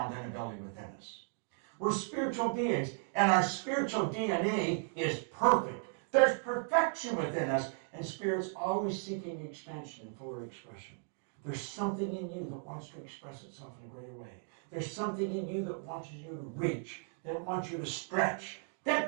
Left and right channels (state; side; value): silent; left; 54 dB below the other